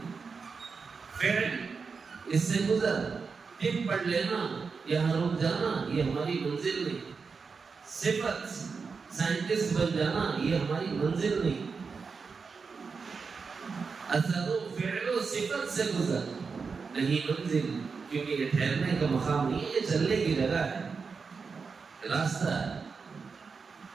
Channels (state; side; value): quieter; left; 5.1 dB